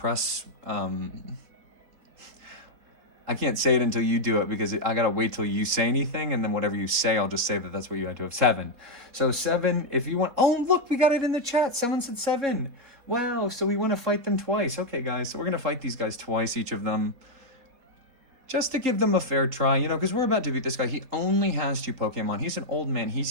I can't say it until you do it because I got to wait till you say anything, and then whatever you say, I'll just say that that's what you had to have. 7. So 7, if you want... Oh, look, we got it in the chat. Someone said 7. Wow, so we want to fight them twice. Okay, guys, so we're going to fight these guys twice, each of them. Just to give them a fair try, because we're about to beat this guy. He only has 2 Pokemon. He's an old man.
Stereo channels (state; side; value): late; left; 4.2 ms